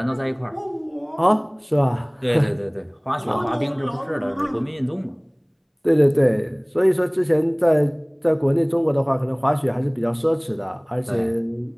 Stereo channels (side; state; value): both; identical; correlation 1.00